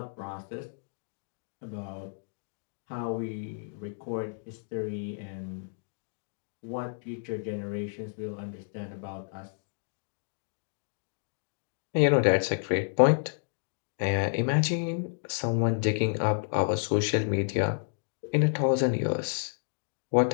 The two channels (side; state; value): right; silent; digital silence